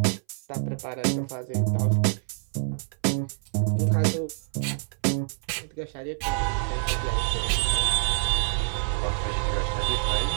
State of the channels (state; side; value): silent; left; 60 dB below the other